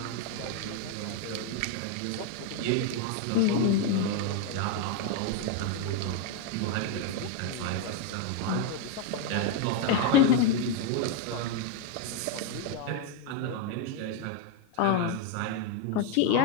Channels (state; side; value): different; both; correlation 0.01